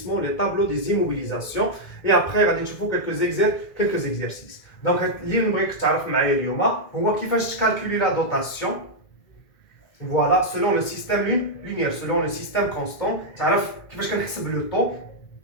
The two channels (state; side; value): late; right; 2.0 ms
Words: لي طابلو دي زيموبيليزاسيون اي ابري غادي نشوفوا كلكو زيكزارسيس دونك اللي نبغيك تعرف معايا اليوم هو كيفاش تكالكولي لا دوطاسيون فوالا سولون لو سيستيم لينيير سولون لو سيستيم كونستون تعرف كيفاش كنحسب لو طو